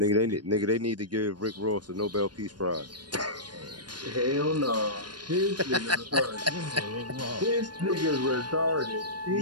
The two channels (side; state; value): left; late; 0.70 ms